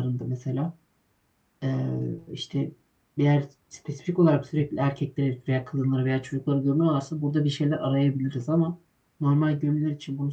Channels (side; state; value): both; identical; correlation 1.00